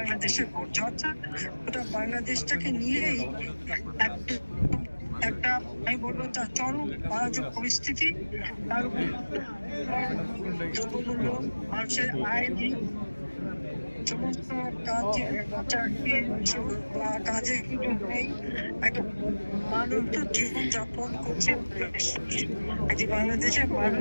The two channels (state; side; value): inverted; both; correlation -1.00